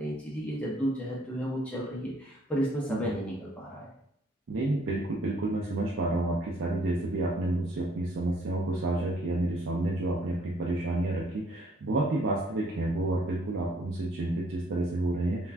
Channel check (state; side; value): normal; both; correlation 0.64